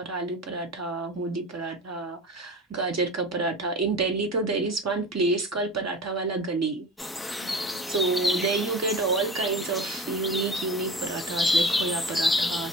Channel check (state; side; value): normal; both; correlation 0.34